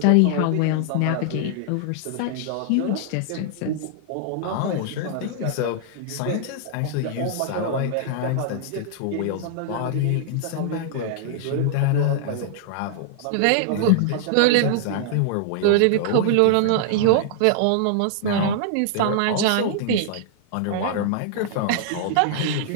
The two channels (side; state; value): both; different; correlation -0.01